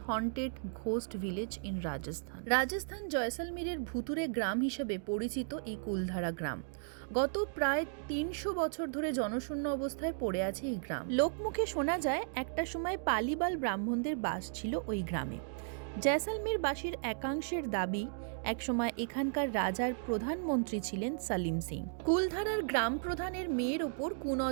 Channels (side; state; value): left; silent; digital silence